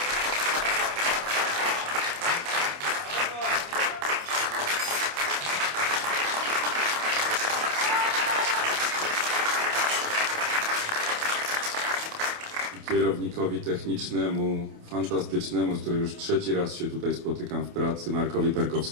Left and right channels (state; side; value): late; left; 28 ms